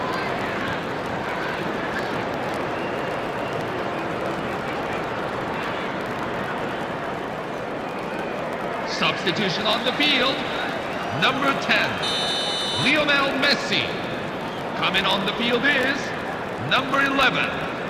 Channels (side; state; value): both; identical; correlation 1.00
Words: Substitution on the field. Number 10, Lionel Messi. Coming on the field is number 11,